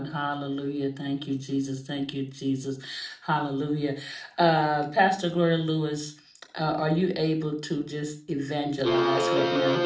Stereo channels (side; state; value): both; identical; correlation 1.00